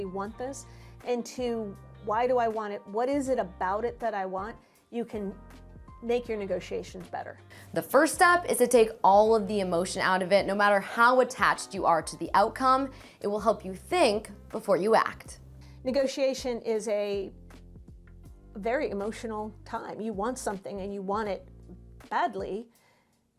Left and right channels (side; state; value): both; identical; correlation 1.00